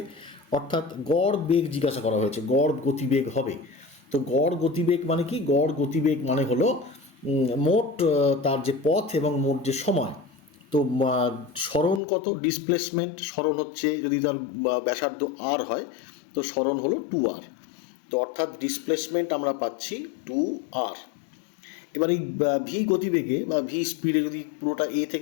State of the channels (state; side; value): drops out; right; at 12.0 s